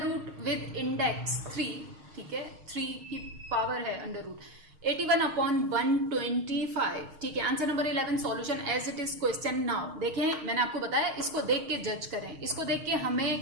रूट विद इंडेक्स 3। ठीक है, 3 की पावर है अंडर रूट 81/125। ठीक है, answer number 11 solution as it is question. Now देखें, मैंने आपको बताया इसको देख के जज करें। इसको देख के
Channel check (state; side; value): late; left; 6.5 ms